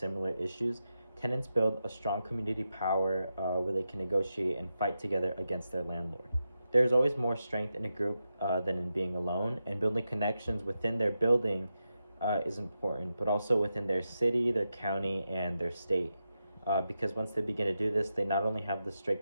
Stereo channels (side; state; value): both; inverted; correlation -0.88